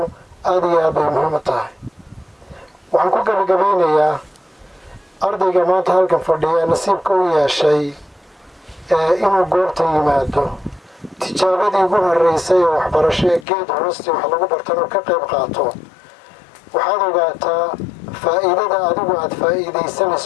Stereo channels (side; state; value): right; drops out; at 13.5 s